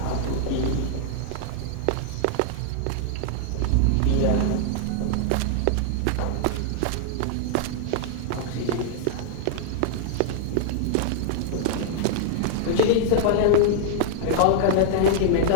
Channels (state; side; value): different; both; correlation -0.01